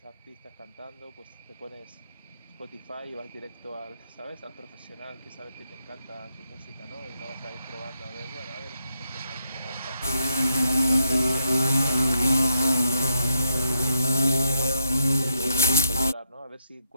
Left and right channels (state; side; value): inverted; both; correlation -0.80